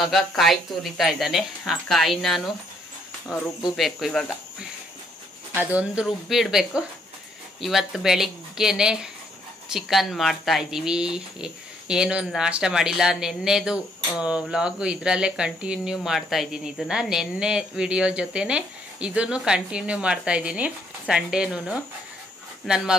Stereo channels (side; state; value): both; normal; correlation 0.70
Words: ಕಾಯಿ ತುರಿತಾ ಇದ್ದಾನೆ, ಆ ಕಾಯಿ ನಾನು ರುಬ್ಬಬೇಕು. ಇವಾಗ ಅದೊಂದು ರುಬ್ಬಿಡಬೇಕು. ಇವತ್ತು ಬೆಳಿಗ್ಗೆನೆ ಚಿಕನ್ ಮಾಡ್ತಾ ಇದ್ದೀವಿ. ಏನು ನಾಷ್ಟ ಮಾಡಿಲ್ಲ. ನೆನ್ನೆದು ವ್ಲಾಗು ಇದರಲ್ಲೇ ಕಂಟಿನ್ಯೂ ಮಾಡ್ತಾ ಇದ್ದೀನಿ. ಇದನ್ನು ನೆನ್ನೆ ವಿಡಿಯೋ ಜೊತೆನೆ ಇದನ್ನು ಕಂಟಿನ್ಯೂ ಮಾಡ್ತಾ ಇದ್ದೀನಿ. ಸಂಡೇನೂ ನನ್ನ